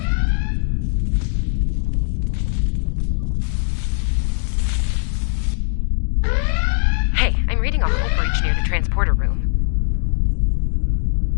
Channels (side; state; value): right; silent; digital silence